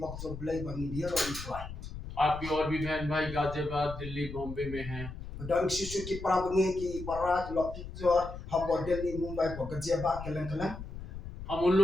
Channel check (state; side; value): noise; left; rumble, 10 dB below the sound